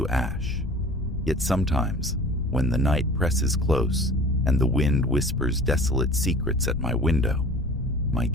ash. Yet sometimes, when the night presses close and the wind whispers desolate secrets at my window, my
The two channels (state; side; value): noise; left; rumble, 10 dB below the sound